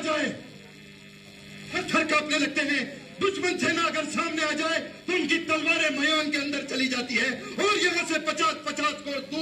जाए पत्थर कांपने लगते हैं। दुश्मन सेना अगर सामने आ जाए तो उनकी तलवारें मैदान के अंदर चली जाती है और यहाँ से 50-50 कोस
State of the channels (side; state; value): both; identical; correlation 1.00